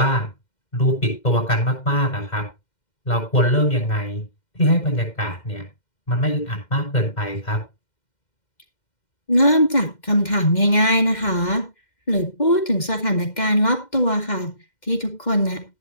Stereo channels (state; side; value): late; right; 2.1 ms